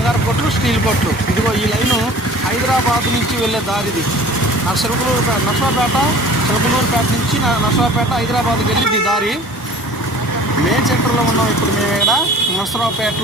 కోట్లు, స్టీల్ కోట్లు. ఇదిగో ఈ లైను హైదరాబాద్ నుంచి వెళ్ళే దారిది. నర్సరావుపేట చిలకలూరుపేట నుంచి నర్సరావుపేట హైదరాబాద్కి వెళ్ళి దారి. మెయిన్ సెంటర్లో ఉన్నాం ఇప్పుడు మేము ఇక్కడ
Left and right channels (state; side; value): normal; both; correlation 0.46